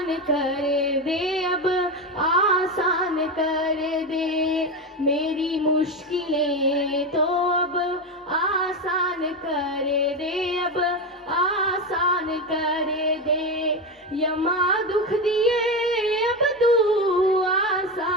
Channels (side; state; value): both; normal; correlation 0.16